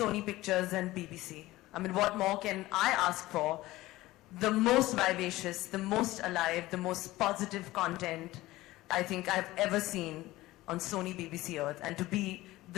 Pictures and BBC. I mean, what more can I ask for? The most vivacious, the most alive, the most positive content I think I've ever seen on Sony BBC Earth. And to be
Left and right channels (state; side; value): quieter; right; 17.8 dB